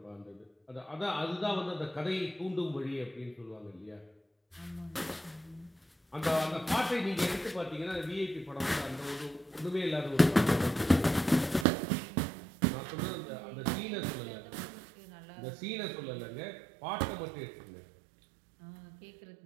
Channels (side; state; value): left; drops out; at 11.7 s